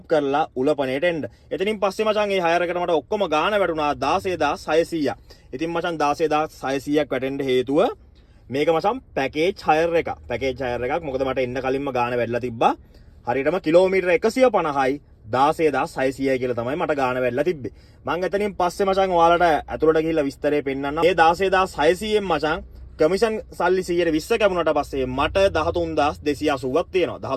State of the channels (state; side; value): identical; both; correlation 1.00